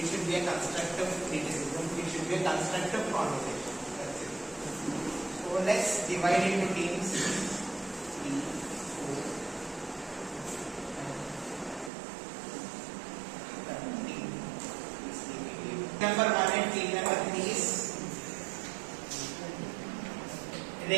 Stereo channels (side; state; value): left; drops out; at 11.9 s